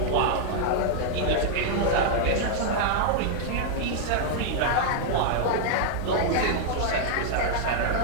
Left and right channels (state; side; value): different; both; correlation -0.01